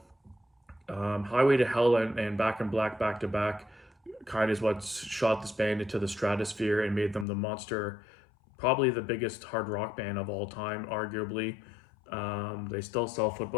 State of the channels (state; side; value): drops out; right; at 7.2 s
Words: Highway to Hell and Back in Black back to back kind of is what shot this band into the stratosphere and made them the monster, probably the biggest hard rock band of all time, arguably. They still sell